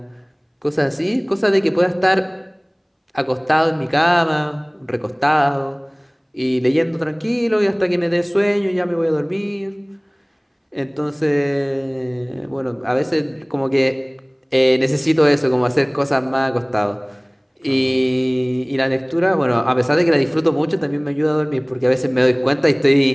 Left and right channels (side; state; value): both; identical; correlation 1.00